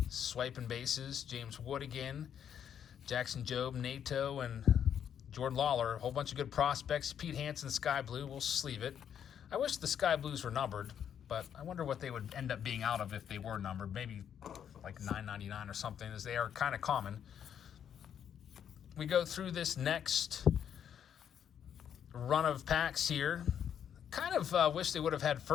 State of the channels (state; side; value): quieter; right; 8.8 dB